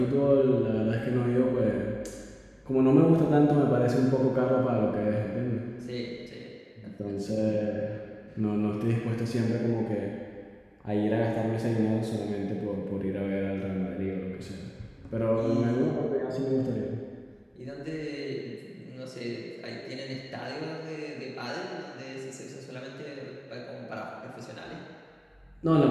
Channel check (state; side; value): identical; both; correlation 1.00